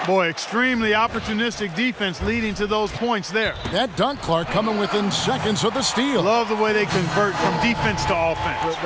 Boy, extremely opportunistic defense leading to those points there. That dunk, Clark, coming within seconds of the steal. Love the way they convert from defense to offense.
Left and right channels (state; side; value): identical; both; correlation 1.00